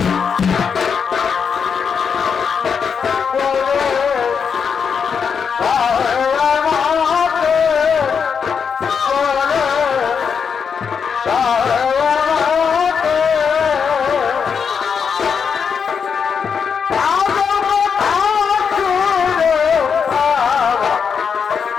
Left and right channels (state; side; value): quieter; right; 6.4 dB